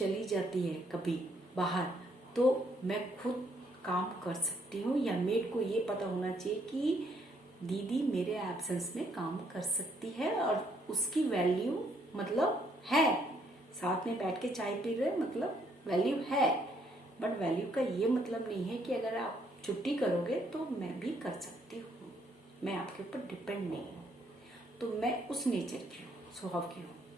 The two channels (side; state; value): both; normal; correlation 0.69